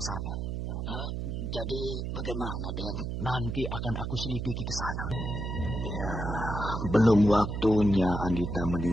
Jadi bagaimana, Den? Nanti akan aku selidiki ke sana. Ya, belum waktunya Andita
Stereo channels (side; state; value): right; noise; hum, 3 dB below the sound